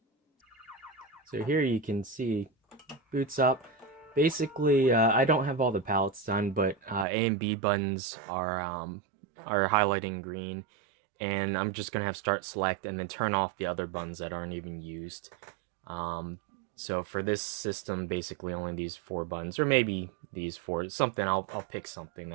So here you can see, boots up. Basically, I don't have all the palettes done, but A and B buttons are highlighting green, and I'm just gonna have start select and then turn off the other buttons that aren't even used. Um, so for this system, basically only these 4 buttons, or maybe these 4. Something I'll pick something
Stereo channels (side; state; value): left; drops out; at 7.1 s